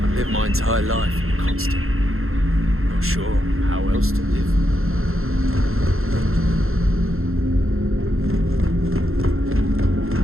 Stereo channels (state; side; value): late; left; 0.61 ms